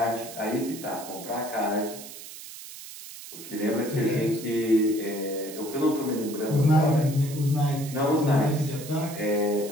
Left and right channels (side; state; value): right; noise; hiss, 13 dB below the sound